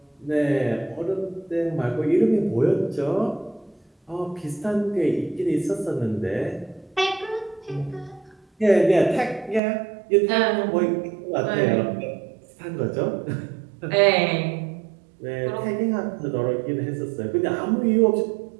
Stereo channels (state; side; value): drops out; left; at 9.6 s